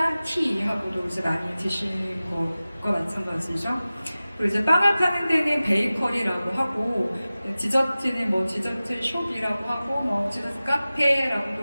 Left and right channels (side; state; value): both; inverted; correlation -0.97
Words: 티하고도 이제 많이 드시는 것과 마찬가지죠. 그리고 이제 빵을 파는 데는 베이커리라고 하고, 디저트는 뭐 디저트 숍이라고 하고, 뭐 디저트